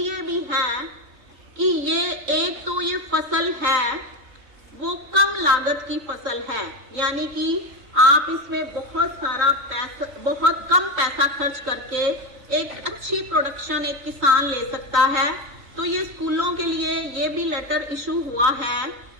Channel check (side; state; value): left; late; 3.9 ms